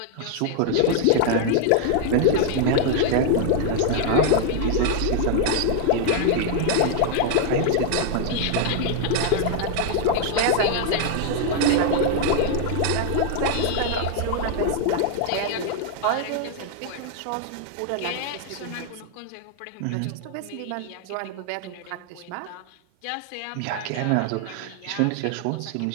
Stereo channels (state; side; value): different; both; correlation 0.00